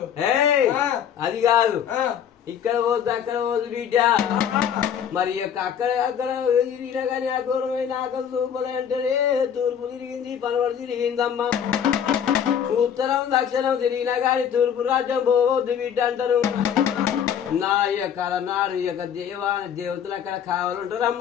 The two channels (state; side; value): quieter; right; 8.5 dB